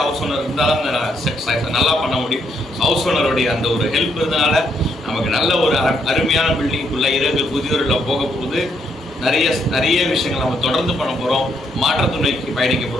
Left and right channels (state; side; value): normal; both; correlation 0.75